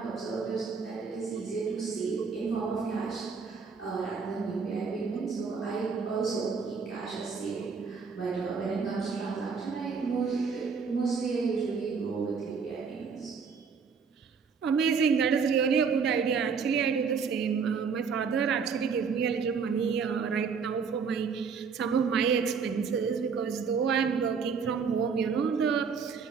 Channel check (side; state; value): left; quieter; 5.7 dB